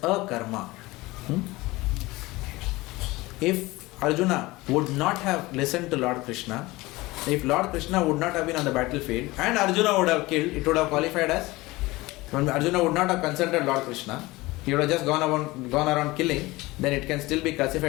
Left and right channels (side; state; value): right; quieter; 20.7 dB